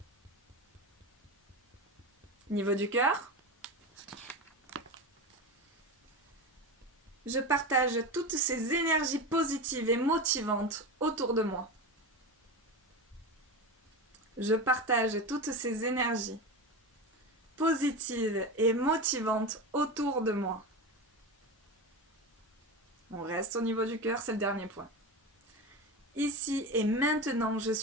Niveau du cœur, je partage toutes ces énergies positives et motivantes autour de moi. Je partage toutes ces énergies positives et motivantes autour de moi. On reste au niveau du cœur, c'est le dernier point. Ici et maintenant, je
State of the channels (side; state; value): both; normal; correlation 0.22